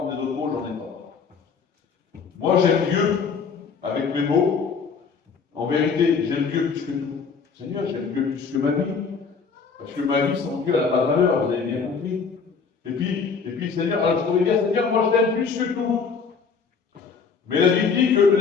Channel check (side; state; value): right; quieter; 5.5 dB